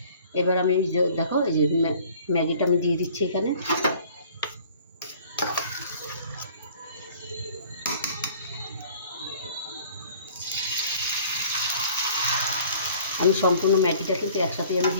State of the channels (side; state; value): both; inverted; correlation -0.52